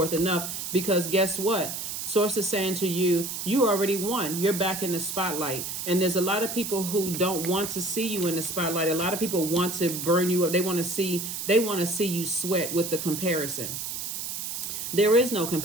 enough. Because guess what? Source is saying to you, you already won. You're back in the spotlight. And there's a lot of people who don't want to see you in the spotlight. A lot of people want to burn you up. They want to see you sweat with the comparison. There is no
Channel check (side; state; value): right; noise; hiss, 5 dB below the sound